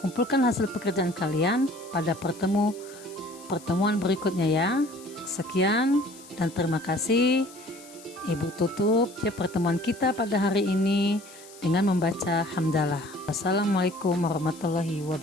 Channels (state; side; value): noise; left; hiss, 20 dB below the sound